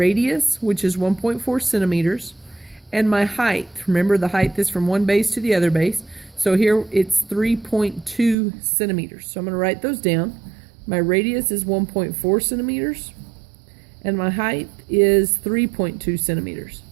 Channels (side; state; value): left; drops out; at 8.3 s